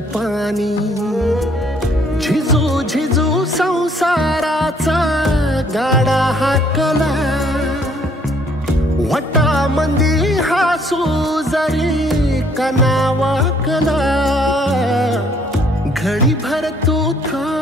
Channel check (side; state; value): both; normal; correlation 0.63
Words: पाणी झिजू झिजू संसाराचा गाडा हाकला वटा मंदी हासू जरी कनावाकला घडी भर तू